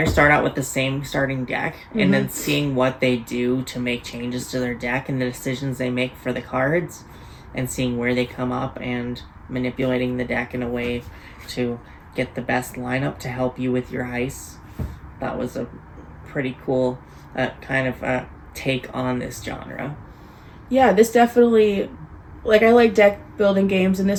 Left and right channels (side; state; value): both; identical; correlation 1.00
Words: start out with the same starting deck, mm-hmm. and then seeing what they do to make changes to their deck and the decisions they make for the cards, and seeing where they come up and manipulating the deck in a way to get the best lineup to help you with your heists. That was a pretty cool kind of take on this genre. Yeah, this definitely, like, I like deck building games, and